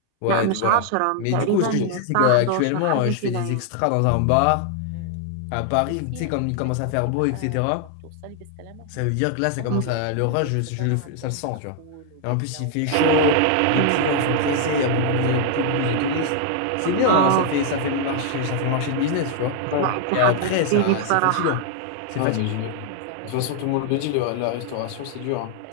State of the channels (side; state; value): both; different; correlation 0.00